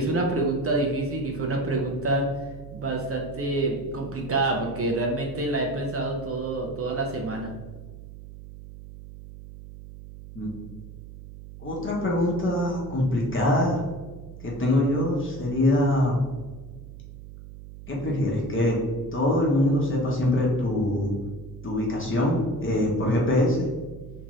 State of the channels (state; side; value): noise; right; hum, 15 dB below the sound